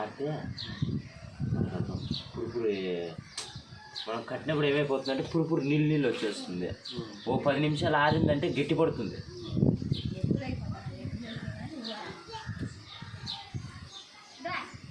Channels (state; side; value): identical; both; correlation 1.00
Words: పురుపురు మనం కట్టినప్పుడు ఏమైపోతుందంటే పురుపురు నీళ్ళు వచ్చేస్తుంది. ఓ 10 నిమిషాలు ఆరిందంటే గట్టి పడుతుంది.